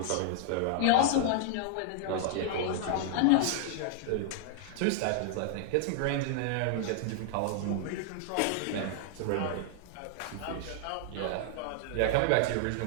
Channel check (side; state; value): both; different; correlation 0.00